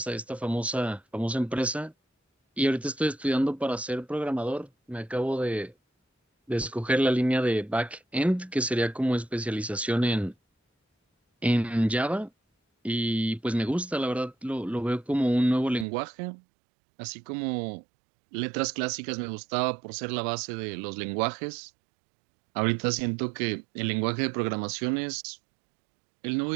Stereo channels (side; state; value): left; drops out; at 15.9 s